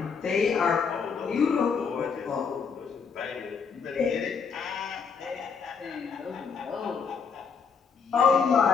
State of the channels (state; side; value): quieter; right; 5.8 dB